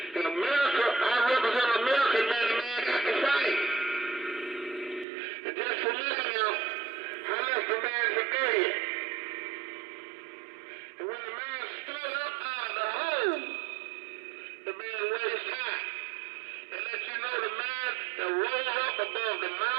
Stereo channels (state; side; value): drops out; left; at 5.1 s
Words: In America, I represent America, man, the man got to fight. And just for me now, I left the man for dead. And when the man stood up out of the hole, the man raised high. And let you know the man that rose up above the